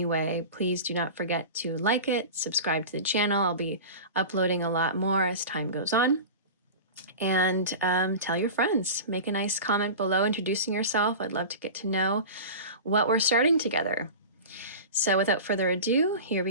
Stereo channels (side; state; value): both; inverted; correlation -0.31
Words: way, please do not forget to like it, subscribe to the channel. I'll be uploading a lot more as time goes on. And tell your friends. Make a nice comment below introducing yourself. I'd love to get to know what we're starting together. So without further ado, here